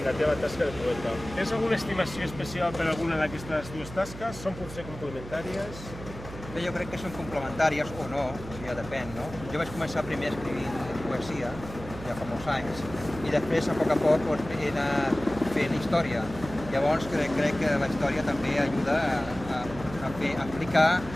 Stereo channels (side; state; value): right; noise; hum, 13 dB below the sound